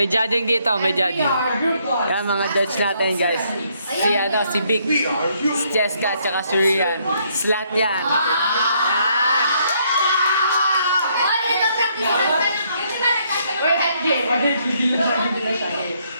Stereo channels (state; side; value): inverted; both; correlation -0.70